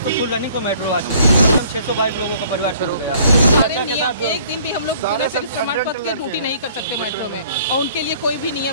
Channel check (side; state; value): both; inverted; correlation -0.57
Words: तो फुल रनिंग को मेट्रो आ चुकी है। मतलब 622 लोगों का परिवार शुरू हो गया है। एक दिन भी हम लोग प्रमाण पत्र की ड्यूटी नहीं कर सकते मेट्रो में, और उनके लिए कोई भी